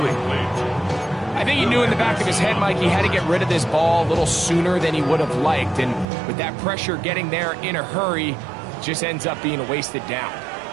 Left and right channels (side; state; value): left; drops out; at 6.1 s